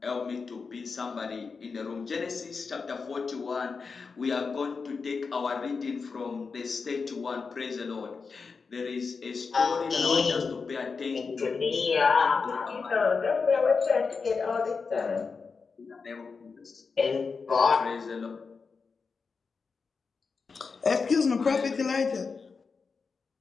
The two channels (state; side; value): quieter; right; 4.9 dB